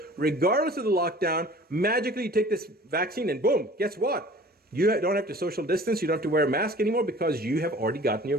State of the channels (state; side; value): normal; both; correlation 0.47